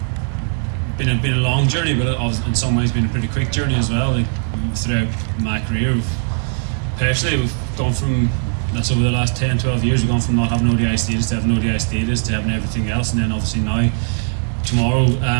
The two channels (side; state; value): left; silent; 56 dB below the other